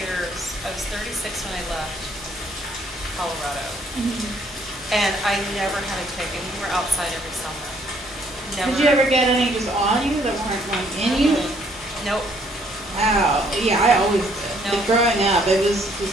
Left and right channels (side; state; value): both; normal; correlation 0.65